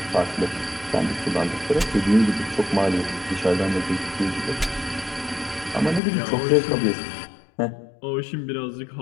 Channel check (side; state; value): right; drops out; at 6.0 s